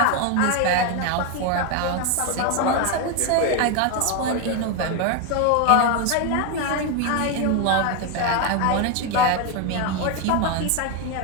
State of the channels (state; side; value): different; both; correlation 0.01